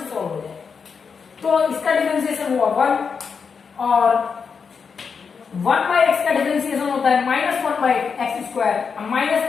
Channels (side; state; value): right; quieter; 5.8 dB